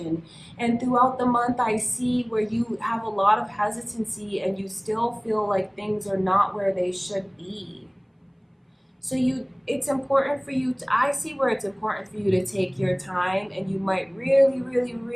And throughout the month, I see where you have a lot of hesitancy and you still feel like things are not where they should be. So it's important for you to, I see where it's important for you to take your time, and you might really, really,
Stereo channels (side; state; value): both; identical; correlation 1.00